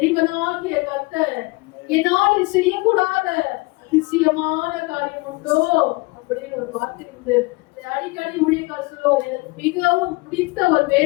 கர்த்தர் என்னால் செய்யக்கூடாத அதிசயமான காரியம் உண்டோ அப்படின்னு ஒரு வார்த்தை உண்டு. அடிக்கடி ஊழியர்கள் சொல்லுவார், எனக்கு மிகவும் பிடித்த ஒரு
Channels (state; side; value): quieter; right; 24.7 dB